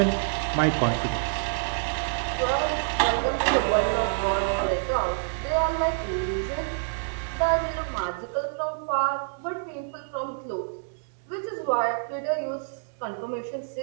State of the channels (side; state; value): left; silent; digital silence